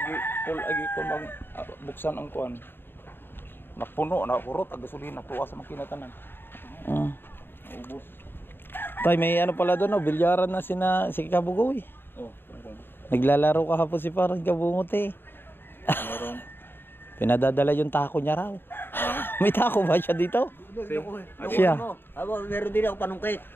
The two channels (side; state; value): right; late; 0.10 ms